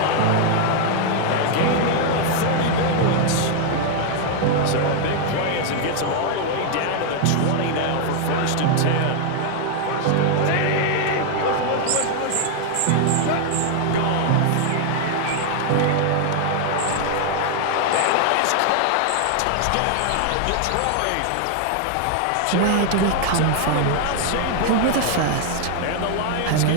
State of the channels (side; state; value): both; different; correlation 0.00